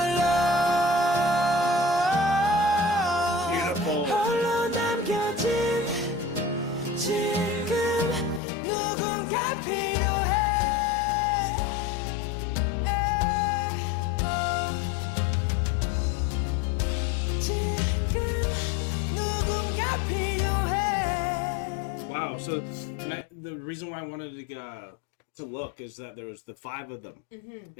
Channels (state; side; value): drops out; right; at 8.4 s